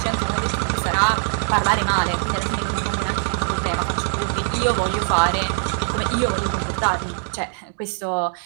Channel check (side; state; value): left; silent; digital silence